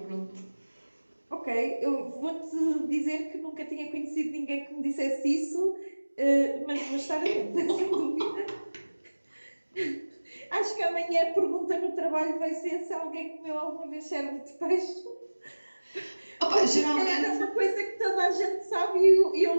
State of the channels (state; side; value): inverted; both; correlation -1.00